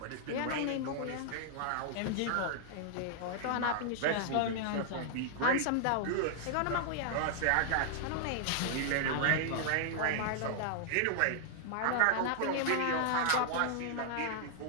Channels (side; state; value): both; different; correlation -0.01